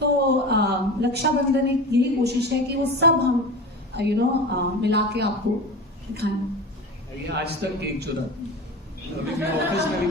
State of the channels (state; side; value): normal; both; correlation 0.30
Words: रक्षाबंधन एक यही कोशिश है कि वो सब हम मिला के आपको दिखाएं। आज तक केक चुरा, अभी मैं ऑफिस में भी